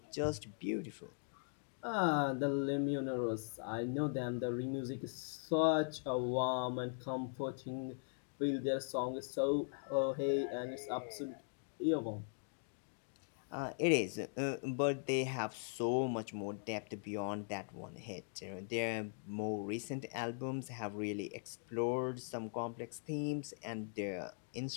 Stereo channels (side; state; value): right; silent; digital silence